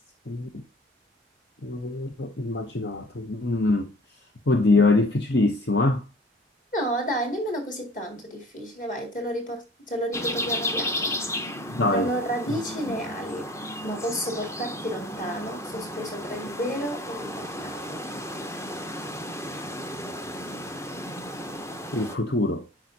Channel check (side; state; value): both; normal; correlation 0.48